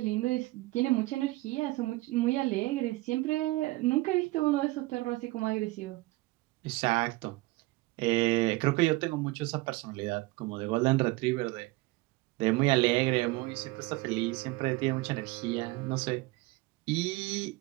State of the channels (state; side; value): quieter; left; 20.9 dB